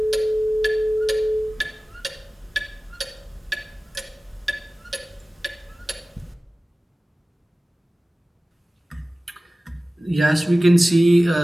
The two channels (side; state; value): both; normal; correlation 0.97